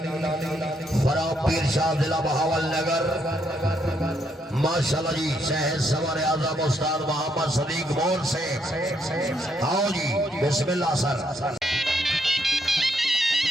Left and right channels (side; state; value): both; normal; correlation 0.75